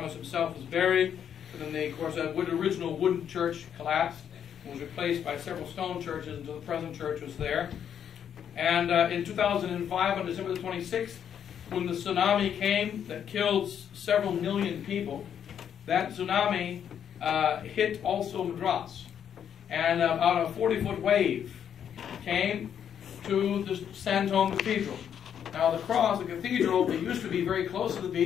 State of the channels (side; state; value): right; quieter; 8.7 dB